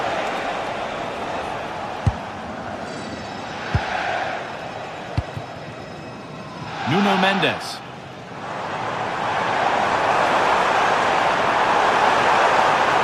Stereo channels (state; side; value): identical; both; correlation 1.00